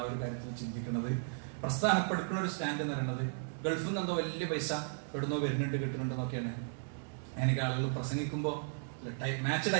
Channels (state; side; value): silent; left; digital silence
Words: ആ ഒരു കാര്യത്തിൽ ചിന്തിക്കുന്നത്. പ്രസ്ഥാനപ്പെടുക്കുന്ന ഒരു സ്റ്റാൻഡ് എന്ന് പറയുന്നത് ഗൾഫിൽ നിന്ന് എന്തോ വലിയ പൈസ എവിടുന്നോ വരുന്നുണ്ട് കിട്ടുന്നുണ്ടെന്നൊക്കെയാണ്. എനിക്ക് ആളുകൾ പ്രസംഗിക്കുമ്പോൾ മാച്ച്